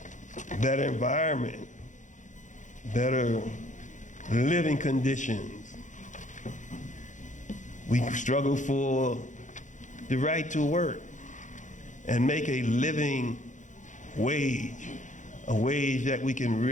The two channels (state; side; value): late; right; 0.36 ms